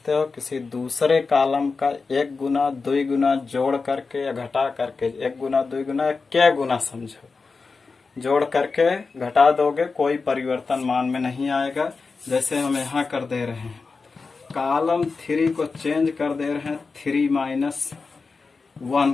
हो, किसी दूसरे कॉलम का 1 गुना 2 गुना जोड़ करके या घटा करके 1 गुना 2 गुना क्या गुना समझो, जोड़ करके घटा दोगे, कोई परिवर्तन मान में नहीं आएगा। जैसे हम यहाँ कर दे रहे हैं, कॉलम 3 को चेंज कर दे रहे हैं 3 माइनस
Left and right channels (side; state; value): right; quieter; 4.4 dB